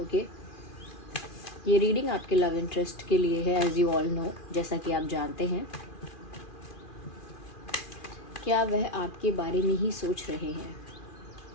ओके ये रीडिंग आपके लव इंटरेस्ट के लिए है, एज यू ऑल नो, जैसा कि आप जानते हैं। क्या वह आपके बारे में ही सोच रहे हैं?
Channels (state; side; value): late; right; 2.4 ms